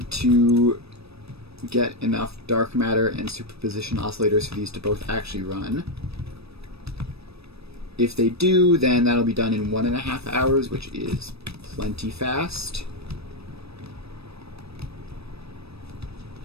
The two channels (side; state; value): left; late; 0.78 ms